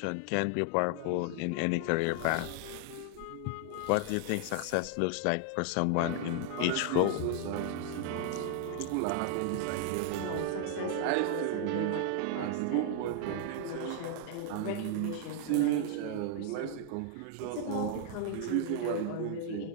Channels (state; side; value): different; both; correlation 0.00